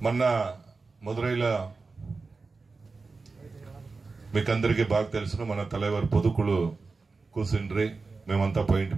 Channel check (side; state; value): left; quieter; 4.1 dB